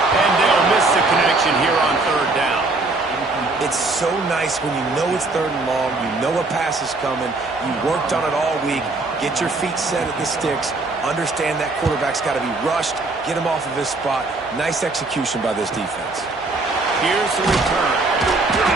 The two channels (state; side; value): quieter; left; 3.3 dB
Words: And they'll miss the connection here on 3rd down. It's so nice when you know it's 3rd and long, you know a pass is coming, you worked on it all week, get your feet set at the sticks, understand that quarterback's got to be rushed, get him off of his spot. Nice execution by this defense. Here's the return.